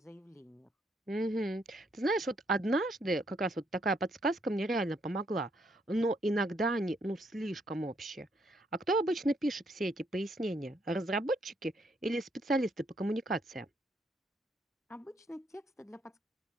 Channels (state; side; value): normal; both; correlation 0.73